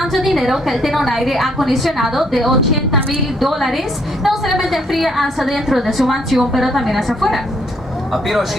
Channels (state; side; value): normal; both; correlation 0.69